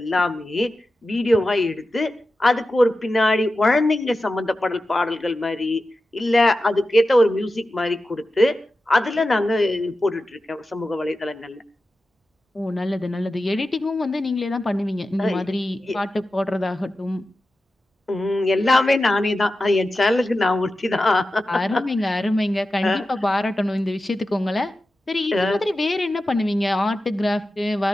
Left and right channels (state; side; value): normal; both; correlation 0.93